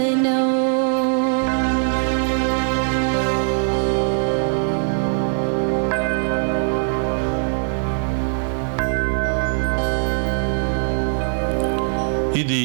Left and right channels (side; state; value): left; silent; 63 dB below the other